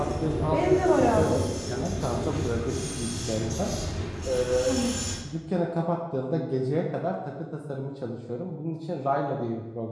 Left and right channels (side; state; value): both; identical; correlation 1.00